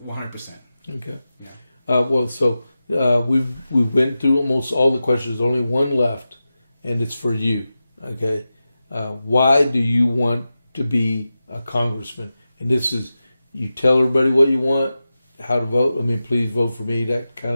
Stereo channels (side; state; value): both; inverted; correlation -0.93